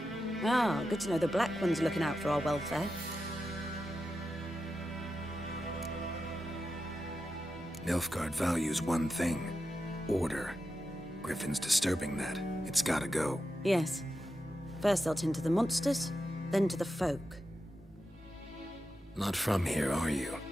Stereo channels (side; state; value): both; normal; correlation 0.89